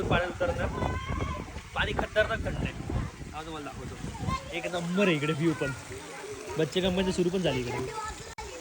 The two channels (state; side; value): identical; both; correlation 1.00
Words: पाण्यात उतरणार पाणी खतरनाक थंड आहे हा तुम्हाला दाखवतो एक नंबर आहे इकडे व्ह्यू पण बच्चे कंपनी सुरू पण झाली इकडे